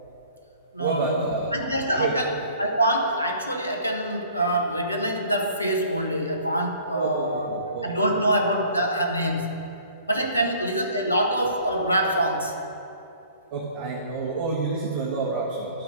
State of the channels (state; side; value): inverted; both; correlation -0.53